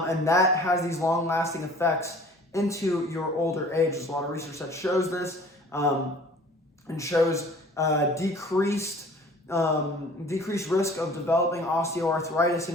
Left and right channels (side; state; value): both; normal; correlation 0.49